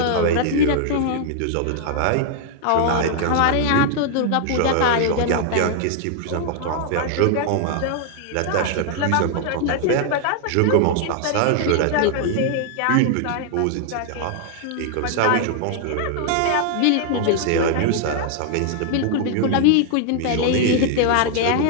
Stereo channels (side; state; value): both; different; correlation 0.00